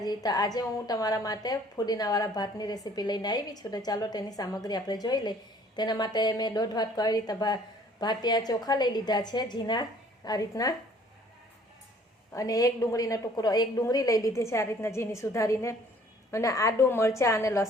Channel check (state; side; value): normal; both; correlation 0.56